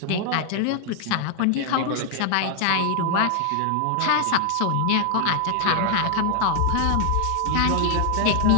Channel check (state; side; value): different; both; correlation 0.00